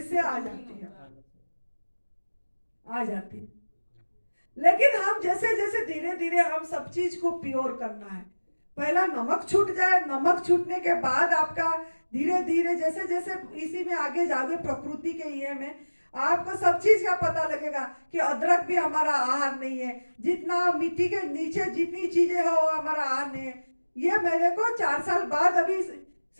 आ जाती है, आ जाती है। लेकिन हम जैसे जैसे धीरे धीरे हम सब चीज को प्योर करना है। पहला नमक छूट जाए, नमक छूटने के बाद आपका धीरे धीरे जैसे जैसे इसी में आगे जाओगे प्रकृति के ये में आपको सब चीज का पता लगेगा कि अदरक भी हमारा आहार नहीं है, जितना मिट्टी के नीचे जितनी चीजें है वो हमारा आहार नहीं है। ये मेरे को 4 साल बाद अभी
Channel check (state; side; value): inverted; both; correlation -1.00